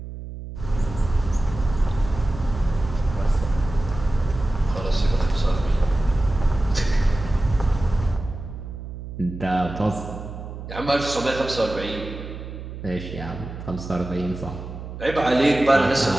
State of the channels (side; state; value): right; noise; hum, 10 dB below the sound